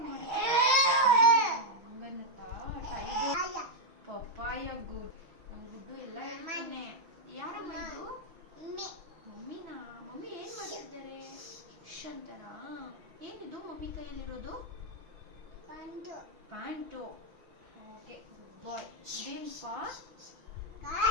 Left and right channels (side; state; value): left; late; 6.1 ms